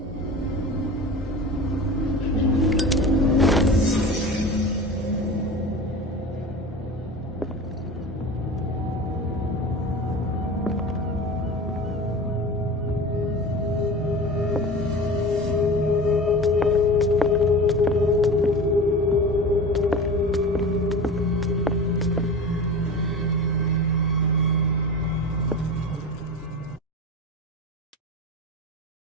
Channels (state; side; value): normal; both; correlation 0.32